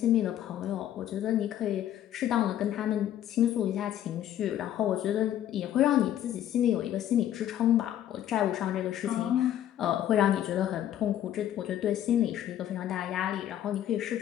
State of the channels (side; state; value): right; quieter; 11.5 dB